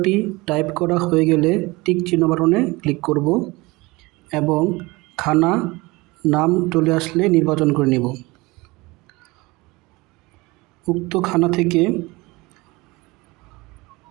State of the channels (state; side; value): quieter; left; 22.9 dB